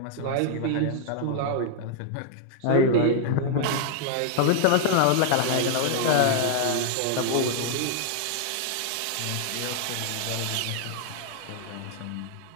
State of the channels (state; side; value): different; both; correlation -0.01